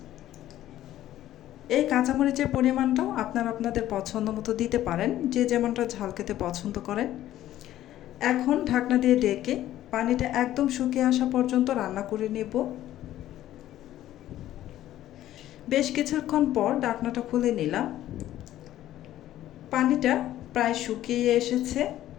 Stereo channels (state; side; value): quieter; right; 13.3 dB